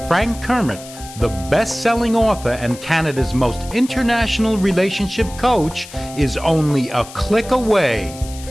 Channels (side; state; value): left; noise; hiss, 16 dB below the sound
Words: Frank Kermit, the best-selling author and Canada's most international relationship coach, is only a click away